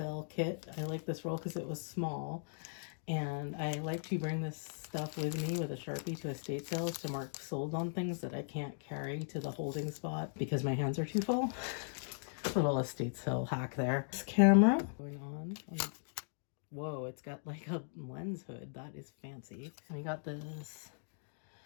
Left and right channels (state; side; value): silent; right; digital silence